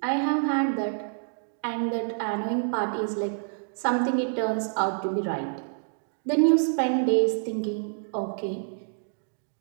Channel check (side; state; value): left; silent; digital silence